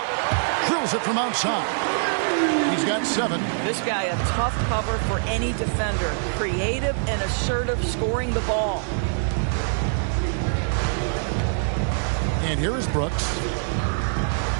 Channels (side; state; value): left; silent; digital silence